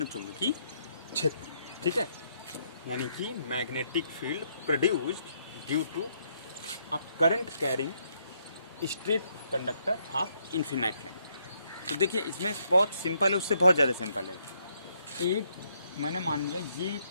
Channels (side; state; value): both; inverted; correlation -0.74